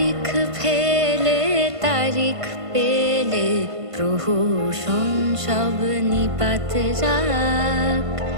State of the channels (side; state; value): left; late; 1.5 ms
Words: ফেলে তারিখ পেলে প্রহসন সব নিপাত যাক।